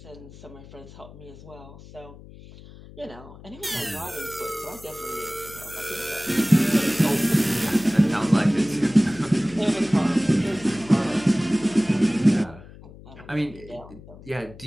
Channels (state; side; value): noise; left; hum, 19 dB below the sound